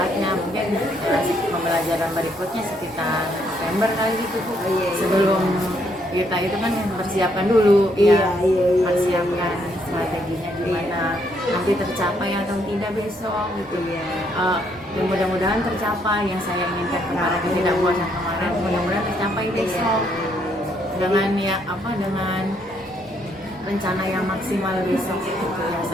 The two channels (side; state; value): both; normal; correlation 0.72